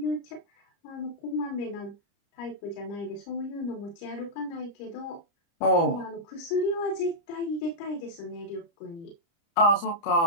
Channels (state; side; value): late; right; 30 ms